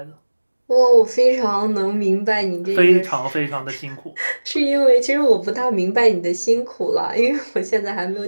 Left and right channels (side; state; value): both; inverted; correlation -1.00